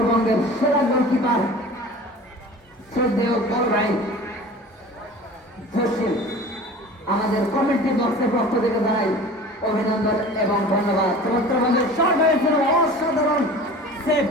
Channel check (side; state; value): both; normal; correlation 0.40